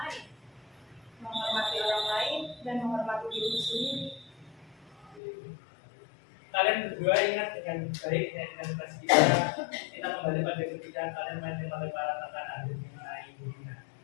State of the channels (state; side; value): drops out; right; at 5.2 s